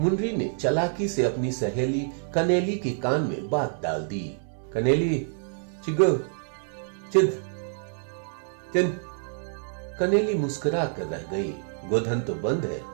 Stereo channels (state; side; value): silent; left; 56 dB below the other